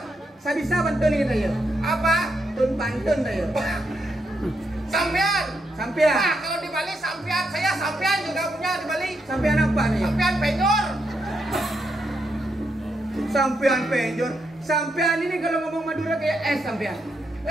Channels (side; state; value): both; normal; correlation 0.80